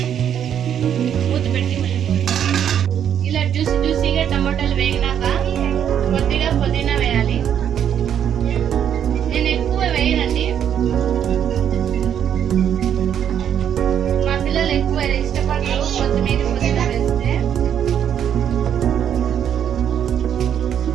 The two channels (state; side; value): quieter; left; 9.2 dB